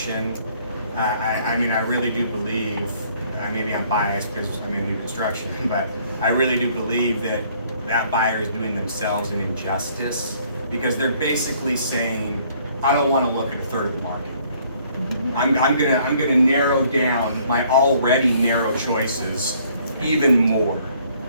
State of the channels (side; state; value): both; inverted; correlation -0.62